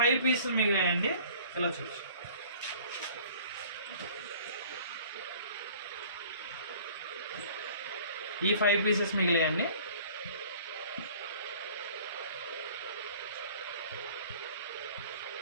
పీసులు మిగిలాయండి. ఇలా చూసి ఈ 5 పీసెస్ మిగిలాయండి.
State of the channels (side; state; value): both; inverted; correlation -0.50